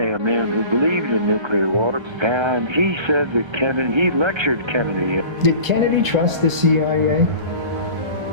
a man who believed in nuclear war, and he said that he lectured Kennedy. Did Kennedy trust the CIA?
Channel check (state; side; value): late; left; 1.3 ms